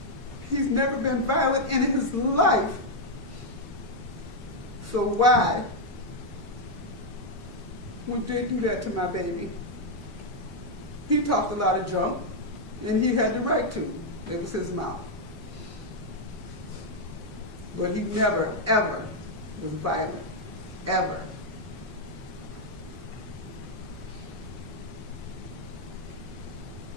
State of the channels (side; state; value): both; normal; correlation -0.01